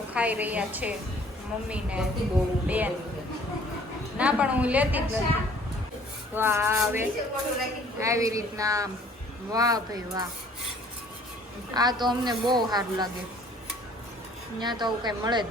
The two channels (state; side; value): normal; both; correlation 0.55